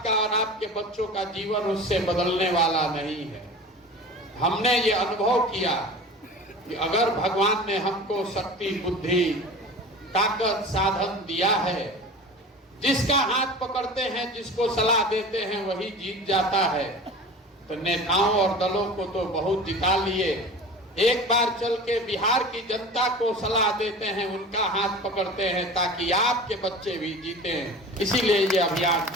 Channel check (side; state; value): both; normal; correlation 0.37